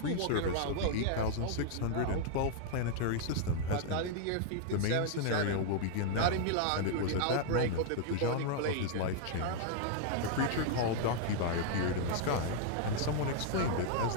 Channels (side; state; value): both; different; correlation -0.01